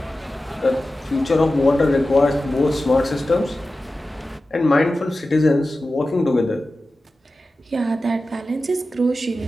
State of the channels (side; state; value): both; normal; correlation 0.94